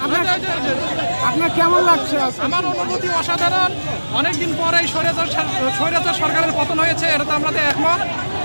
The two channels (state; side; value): inverted; both; correlation -1.00